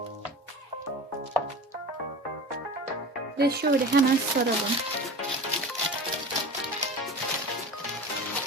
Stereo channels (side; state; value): both; normal; correlation 0.33